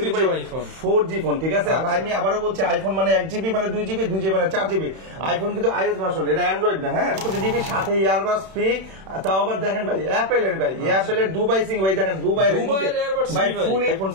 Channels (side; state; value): left; late; 31 ms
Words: 4G ফোন, ঠিক আছে। আর আমি আবারও বলছি, আইফোন মানে 1GB মানে 2GB, 2GB মানে 4GB। আইফোন কিন্তু iOS ভার্সন, এটা অ্যান্ড্রয়েড না। হ্যাঁ, 4GB সাথে ইয়ারবাডস ফ্রি। তাও আবার দেখেন ভাই অ্যাপেলের, ভাই অ্যাপেলের দুবাই সিং, ভাই দেখেন দুবাইয়ের এয়ারবাডস ভাই ফুল আইফোন